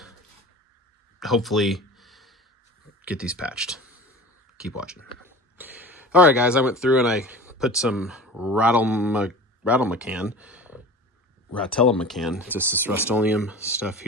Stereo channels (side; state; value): both; normal; correlation 0.37